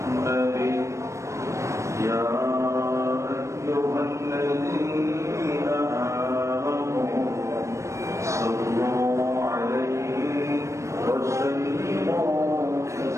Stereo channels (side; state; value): left; late; 0.14 ms